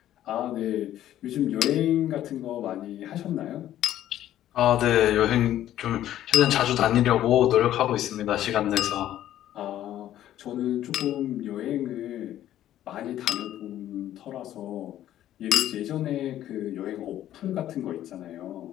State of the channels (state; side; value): quieter; right; 12.4 dB